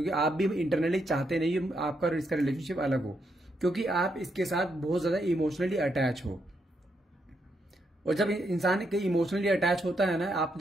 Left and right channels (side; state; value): both; normal; correlation 0.79